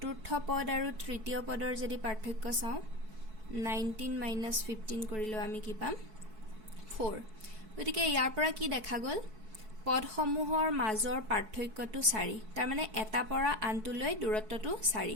পদ আৰু তৃতীয় পদৰ যদি পাৰ্থক্য চাও 19 - 15 কৰিলেও আমি কি পাম 4। গতিকে ইয়াৰ পৰা কি দেখা গল পদসমূহৰ মাজৰ পাৰ্থক্যটো 4 তাৰ মানে এটা পৰা আনটোলৈ দূৰত্বটো 4।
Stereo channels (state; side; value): late; left; 4.6 ms